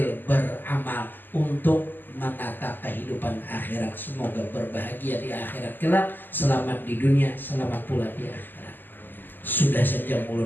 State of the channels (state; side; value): late; right; 0.090 ms